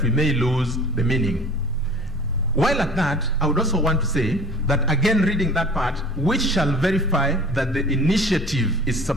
we may lose the meaning. While at that, I would also want to say that, again, reading that part, which shall verify that the initiative is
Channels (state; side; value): normal; both; correlation 0.44